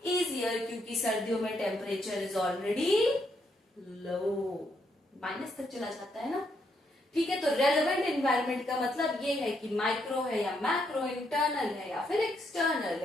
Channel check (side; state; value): both; normal; correlation 0.76